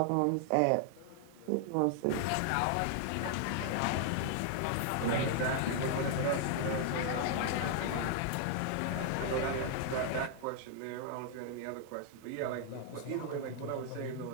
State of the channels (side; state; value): both; different; correlation 0.00